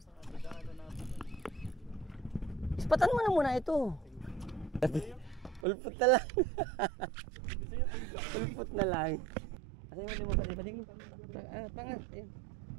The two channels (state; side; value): drops out; left; at 5.7 s